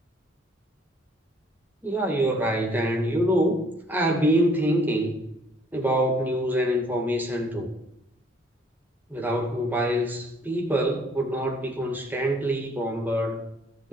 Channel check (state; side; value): normal; both; correlation 0.60